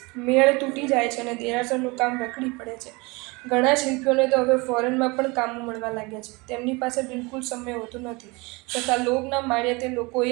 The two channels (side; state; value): left; quieter; 25.9 dB